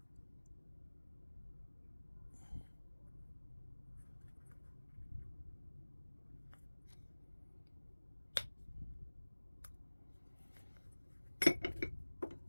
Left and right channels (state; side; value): inverted; both; correlation -1.00